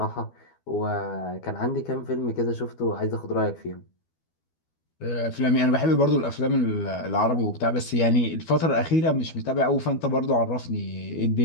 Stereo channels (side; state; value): right; late; 12 ms